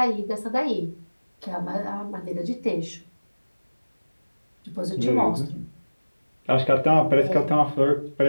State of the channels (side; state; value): both; inverted; correlation -1.00